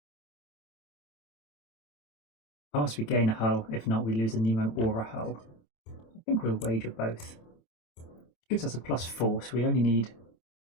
Unless we gain a hull, if not, we lose a Nemo or a hull. I think we'll wager both. Gives us a +4, so we only need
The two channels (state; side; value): late; right; 26 ms